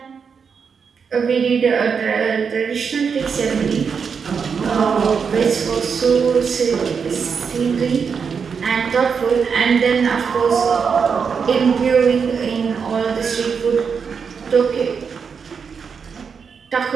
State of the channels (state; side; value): quieter; left; 6.1 dB